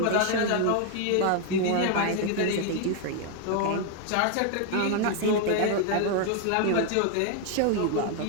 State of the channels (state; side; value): different; both; correlation 0.00